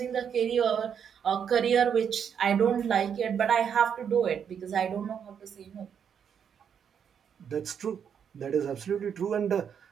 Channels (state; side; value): quieter; left; 7.8 dB